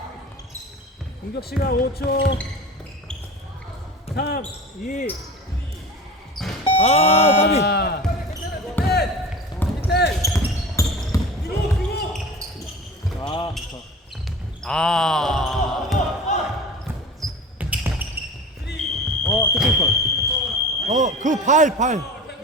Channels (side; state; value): both; normal; correlation 0.35